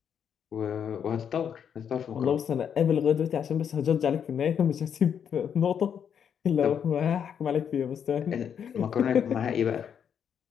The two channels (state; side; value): quieter; right; 8.0 dB